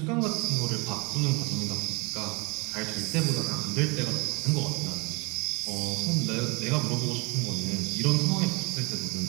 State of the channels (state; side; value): quieter; left; 28.2 dB